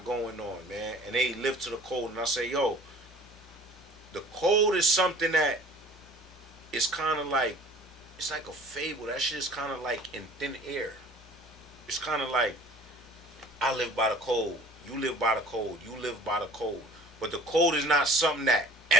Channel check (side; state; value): both; normal; correlation 0.48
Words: going on, man, and they live to the code. And I say, yo, the code is something that is kind of like, it's like a fable. That shit is kind of like in thin air. It's kind of like, I live by the code, you live by the code, you live by the code. But the code is not something that